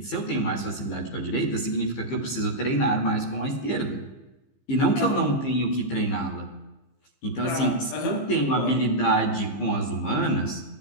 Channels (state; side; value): late; right; 15 ms